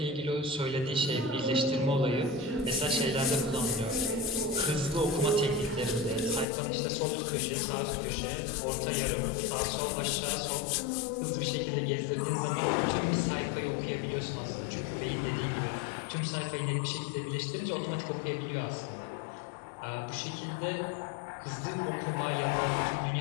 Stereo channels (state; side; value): drops out; right; at 6.5 s